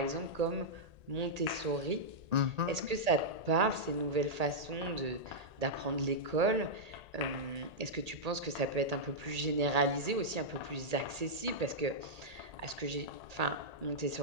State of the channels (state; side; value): late; left; 1.8 ms